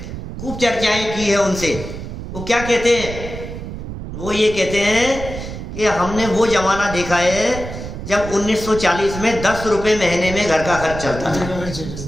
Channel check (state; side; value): noise; right; rumble, 9 dB below the sound